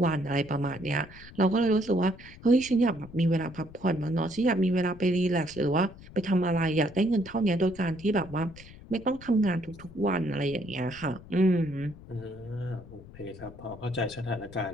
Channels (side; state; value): left; noise; rumble, 18 dB below the sound